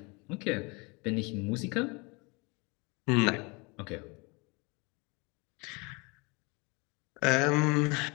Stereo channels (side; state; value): right; quieter; 28.5 dB